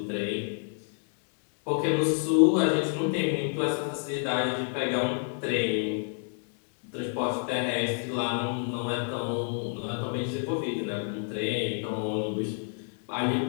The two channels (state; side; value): silent; right; 58 dB below the other